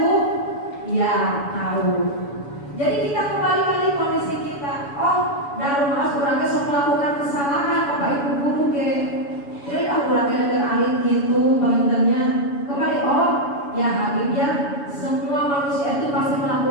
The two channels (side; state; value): right; late; 7.0 ms